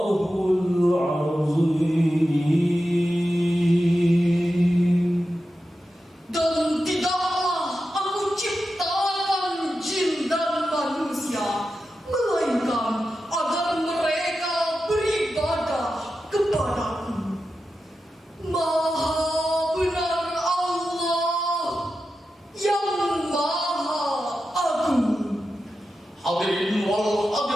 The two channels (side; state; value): both; normal; correlation 0.91